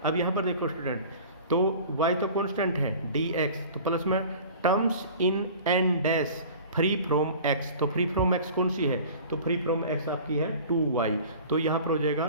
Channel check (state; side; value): inverted; both; correlation -0.42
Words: अब यहाँ पर देखो स्टूडेंट, तो y तो कांस्टेंट है dx, तो प्लस में terms in n dash free from x। तो फ्री फ्रॉम x कौन सी है, तो फ्री फ्रॉम x आपकी है 2y। तो यहाँ पर हो